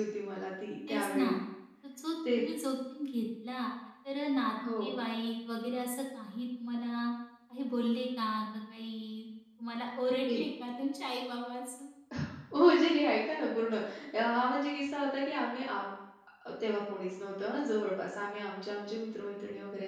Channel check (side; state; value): both; identical; correlation 1.00